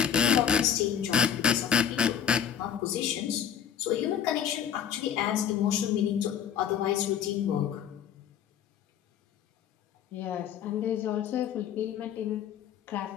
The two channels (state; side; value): quieter; right; 8.7 dB